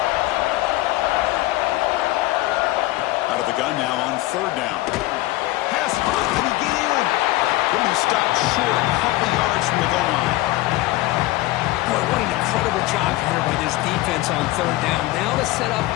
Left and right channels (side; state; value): right; quieter; 18.3 dB